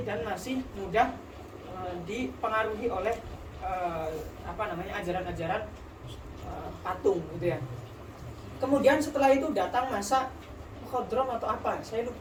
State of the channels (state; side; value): identical; both; correlation 1.00